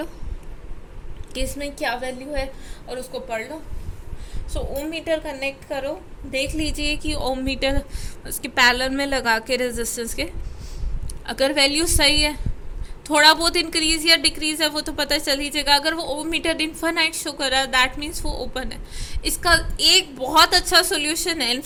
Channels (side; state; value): both; identical; correlation 1.00